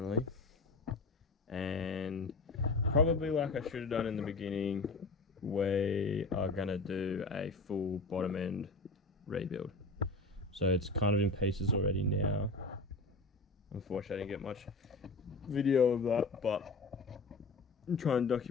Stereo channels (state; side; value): quieter; right; 3.4 dB